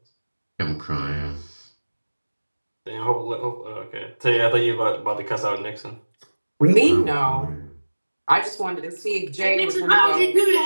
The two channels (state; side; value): inverted; both; correlation -1.00